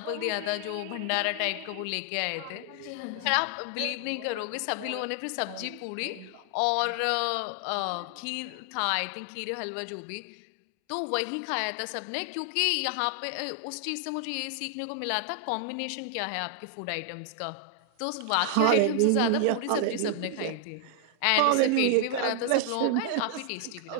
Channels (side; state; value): both; different; correlation 0.00